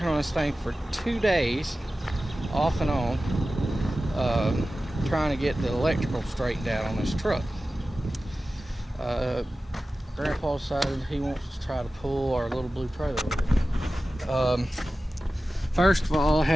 on this thing for 2 days off and on, trying to get the electrical straightened out on this truck. Grandpa decided he wants to try to pull our little blue trailer with it. First of all, I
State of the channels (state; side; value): normal; both; correlation 0.95